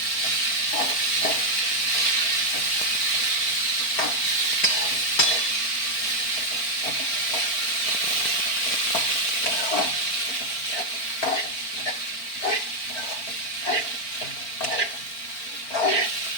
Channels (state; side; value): late; right; 4.4 ms